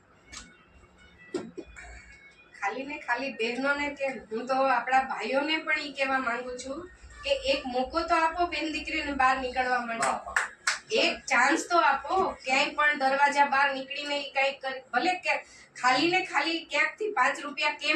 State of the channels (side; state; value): both; identical; correlation 1.00